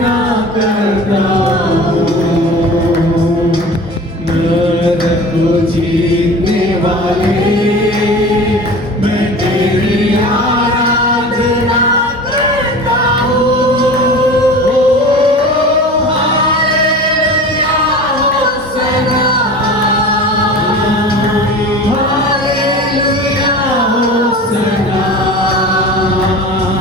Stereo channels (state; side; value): normal; both; correlation 0.36